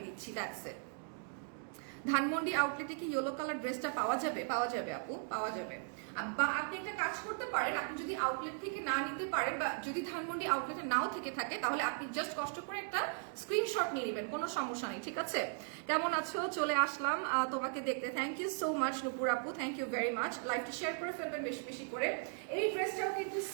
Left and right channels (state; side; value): silent; left; 53 dB below the other